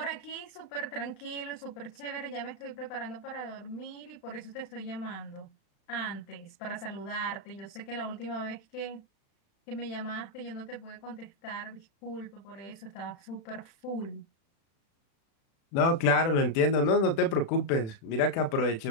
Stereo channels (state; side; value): late; right; 36 ms